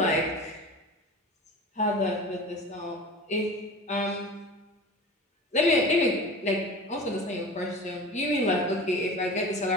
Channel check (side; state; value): both; normal; correlation 0.35